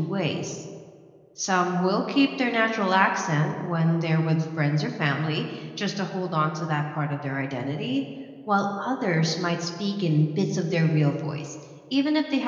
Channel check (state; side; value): identical; both; correlation 1.00